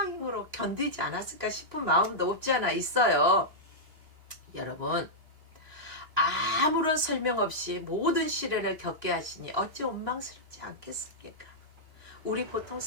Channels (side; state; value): left; late; 2.9 ms